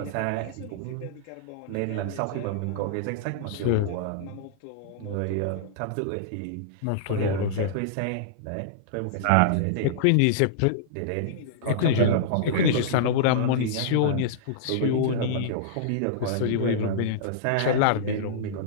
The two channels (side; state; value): both; different; correlation -0.02